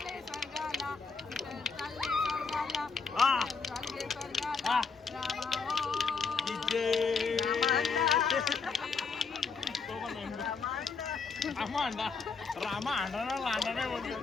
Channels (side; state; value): right; quieter; 4.9 dB